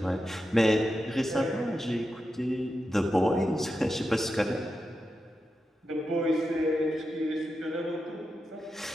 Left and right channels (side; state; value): both; normal; correlation 0.89